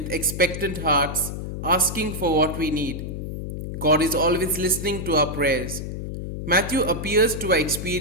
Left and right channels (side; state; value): left; noise; hum, 6 dB below the sound